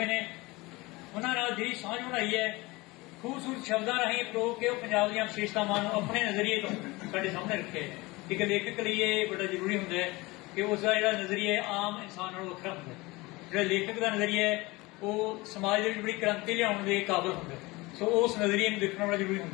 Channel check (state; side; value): quieter; right; 22.6 dB